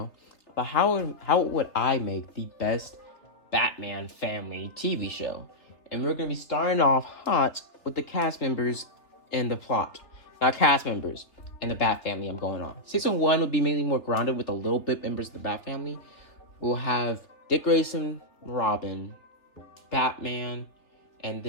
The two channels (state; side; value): late; right; 3.2 ms